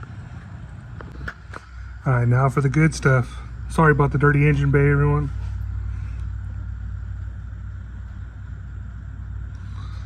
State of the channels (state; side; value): identical; both; correlation 1.00